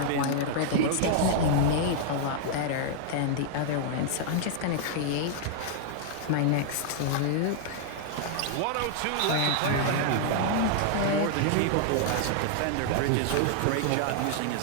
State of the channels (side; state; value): both; different; correlation 0.00